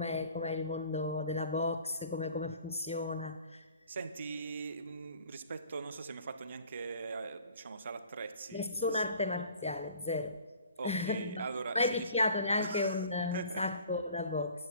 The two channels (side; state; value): both; inverted; correlation -0.49